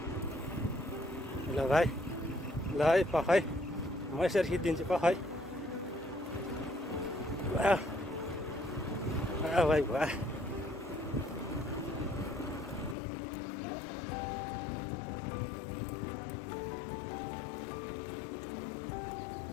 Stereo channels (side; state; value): right; drops out; at 13.0 s